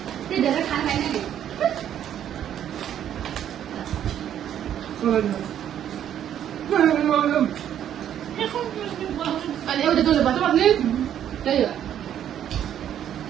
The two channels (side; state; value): left; quieter; 10.2 dB